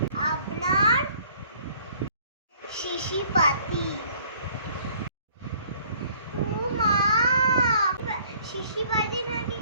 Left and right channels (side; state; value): both; inverted; correlation -0.58